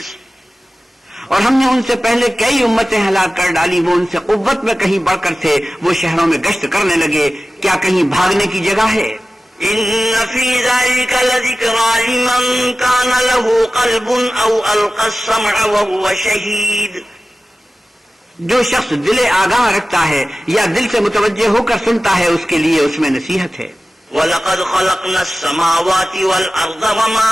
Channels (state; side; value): normal; both; correlation 0.96